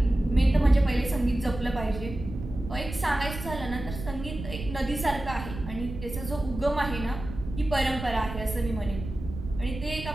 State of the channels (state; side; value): noise; right; rumble, 9 dB below the sound